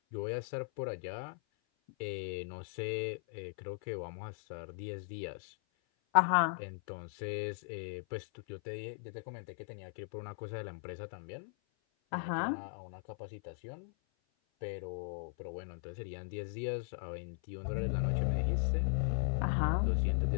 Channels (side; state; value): right; silent; 52 dB below the other